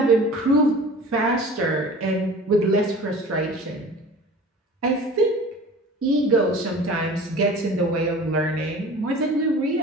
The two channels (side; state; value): both; normal; correlation 0.41